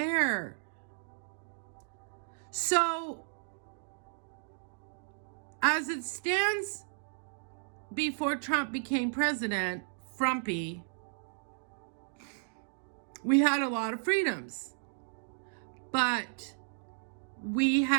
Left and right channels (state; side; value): silent; left; digital silence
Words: So, as it stands before Trump became president, Frumpy, we had a lot of freedoms. But we